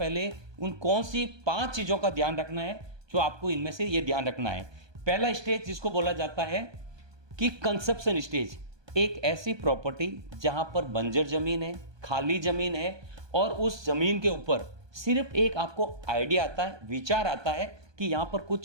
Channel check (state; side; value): late; left; 1.2 ms